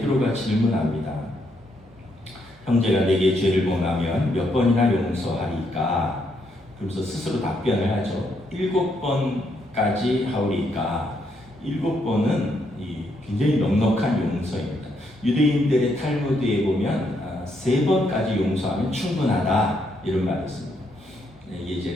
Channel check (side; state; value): both; normal; correlation 0.76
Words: 질문합니다. 형제가 내게 죄를 범하면 몇 번이나 용서하리까? 그러면서 스스로 답변을 하죠. 7번까지 하오리까? 7번은 굉장히 넉넉한 용서입니다. 유대인들의 탈무드에 보면 3번까지 용서하면 충분하다 이런 말이 있습니다. 이게 이제